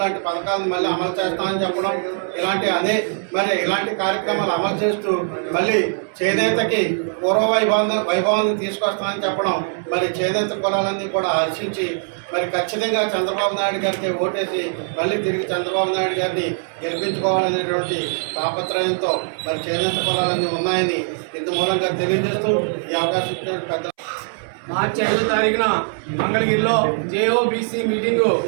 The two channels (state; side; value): silent; left; 65 dB below the other